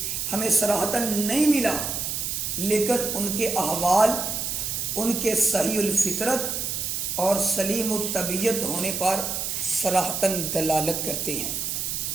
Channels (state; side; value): noise; right; hiss, 2 dB below the sound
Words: ہمیں صراحتاً نہیں ملا، لیکن ان کے احوال ان کے صحیح الفطرت اور سلیم الطبیعت ہونے پر صراحتاً دلالت کرتے ہیں